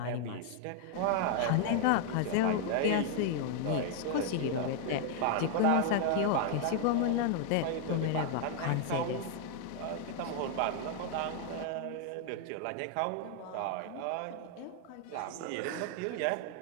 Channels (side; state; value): both; different; correlation 0.00